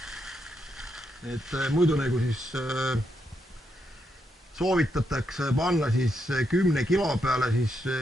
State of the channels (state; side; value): normal; both; correlation 0.81